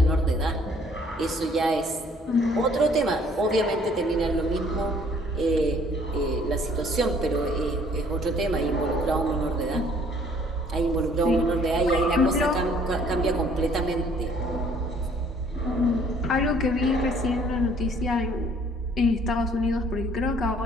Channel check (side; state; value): both; normal; correlation 0.60